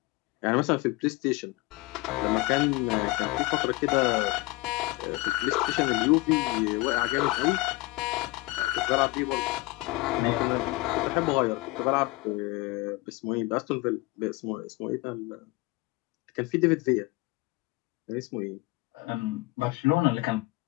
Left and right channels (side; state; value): right; quieter; 21.4 dB